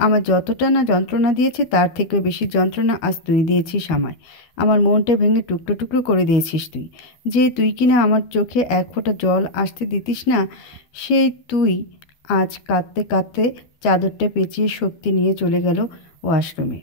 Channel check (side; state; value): right; late; 12 ms